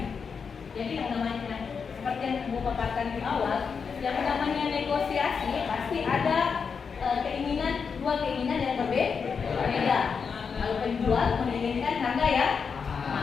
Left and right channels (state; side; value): quieter; right; 5.9 dB